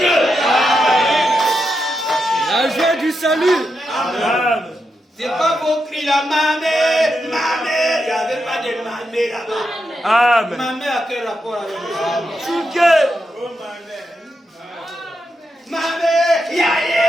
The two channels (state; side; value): normal; both; correlation 0.85